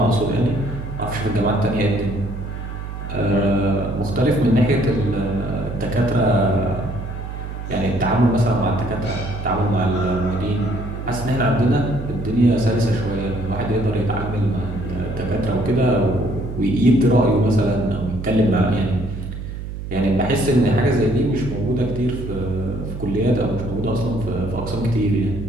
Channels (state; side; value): noise; right; hum, 8 dB below the sound